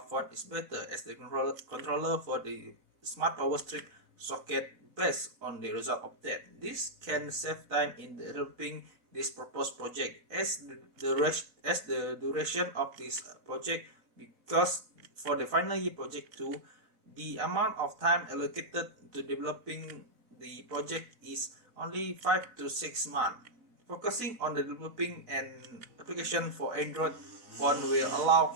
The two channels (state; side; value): late; left; 4.0 ms